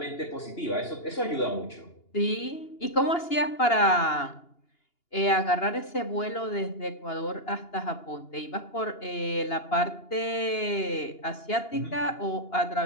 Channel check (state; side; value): late; right; 2.8 ms